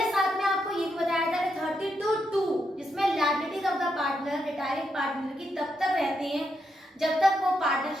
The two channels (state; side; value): normal; both; correlation 0.82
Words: साथ में आपको ये भी बताया था कि 32(2) जिसमें liabilities of the partner, retiring partner की तब तक रहती हैं जब तक वो